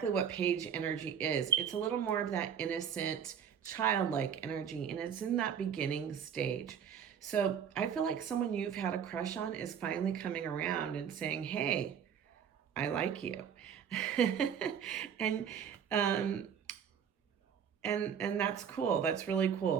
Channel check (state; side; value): quieter; left; 7.9 dB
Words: what Page energy is. It's a little more of that innocent, childlike energy, and it's in that beginning stage. So I feel like someone you've had a crush on is finally coming around and saying, hey, I like you. and that's cool. That's really